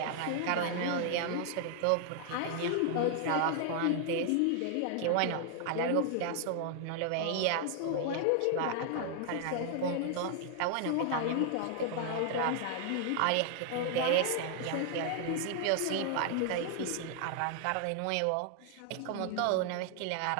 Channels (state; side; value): different; both; correlation 0.00